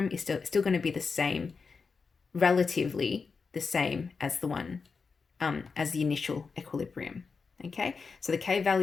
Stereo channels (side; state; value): right; quieter; 5.0 dB